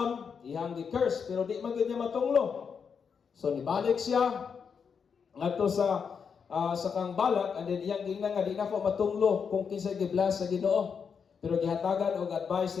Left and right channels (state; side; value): quieter; right; 6.4 dB